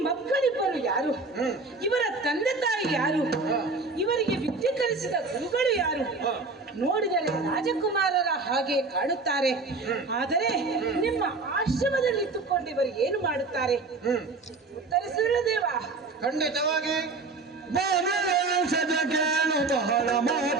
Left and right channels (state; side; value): quieter; left; 3.7 dB